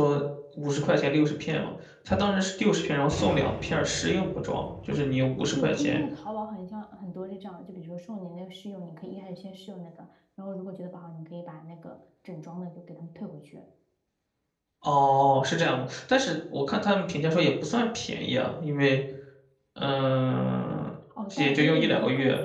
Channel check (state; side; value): identical; both; correlation 1.00